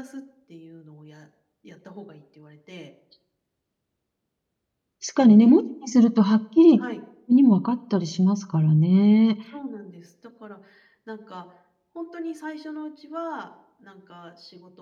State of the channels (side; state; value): both; identical; correlation 1.00